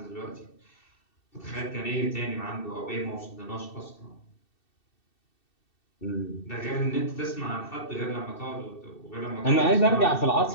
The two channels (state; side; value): late; right; 2.7 ms